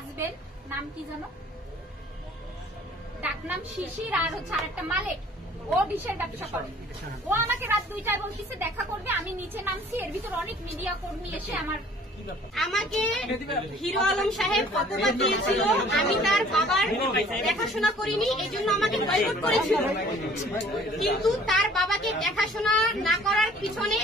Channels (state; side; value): normal; both; correlation 0.53